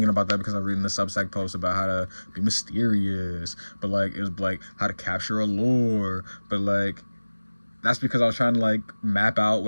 about that because I was reading the Substack post about how to be mysterious, but like it was like how to capture a lore, but like that's because I was trying to like map out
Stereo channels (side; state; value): both; inverted; correlation -1.00